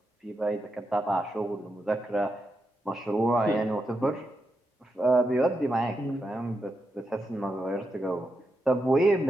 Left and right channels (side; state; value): both; normal; correlation 0.85